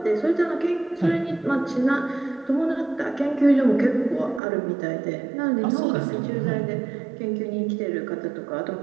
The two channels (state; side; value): drops out; left; at 4.4 s